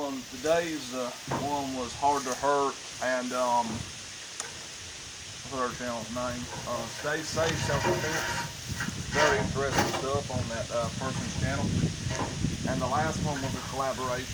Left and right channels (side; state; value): both; identical; correlation 1.00